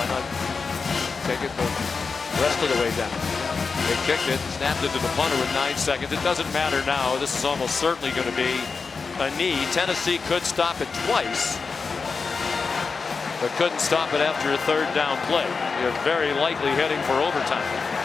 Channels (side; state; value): right; quieter; 4.8 dB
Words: not take it the rest of the way down? They kicked it, snapped it to the punter with 9 seconds. It doesn't matter now. This is almost certainly going to be a knee. Tennessee could stop it twice, but couldn't stop it after a 3rd down play. You're very likely heading for overtime.